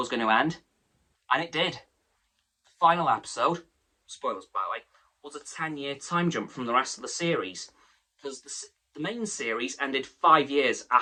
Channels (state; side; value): identical; both; correlation 1.00